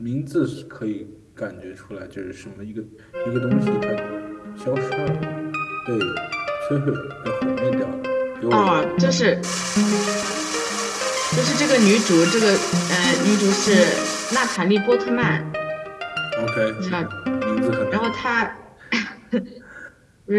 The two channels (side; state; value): both; identical; correlation 1.00